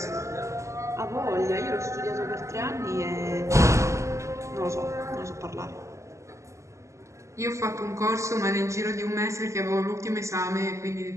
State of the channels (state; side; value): late; left; 0.14 ms